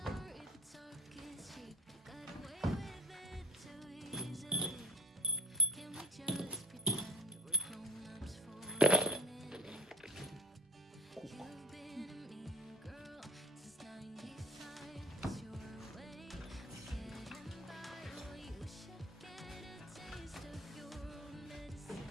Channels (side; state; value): both; normal; correlation 0.38